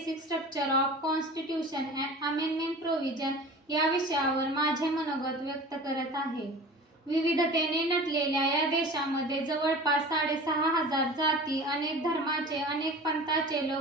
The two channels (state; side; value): normal; both; correlation 0.38